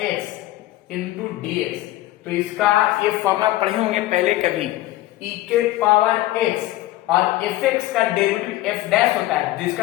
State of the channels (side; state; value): right; quieter; 16.5 dB